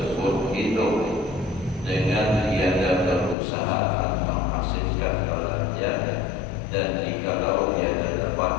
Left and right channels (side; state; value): right; drops out; at 3.4 s